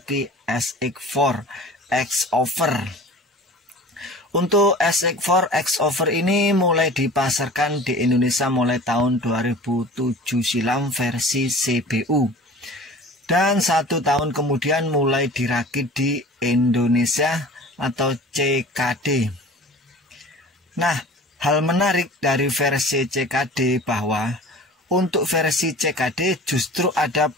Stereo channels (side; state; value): both; normal; correlation 0.42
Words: SX4 X-Over. Untuk SX4 X-Over ini mulai dipasarkan di Indonesia mulai tahun 2007 silam versi CBU. Dan 1 tahun kemudian mulai dirakit di Indonesia atau CKD. Nah, hal menarik dari versi CKD bahwa untuk versi CKD justru ada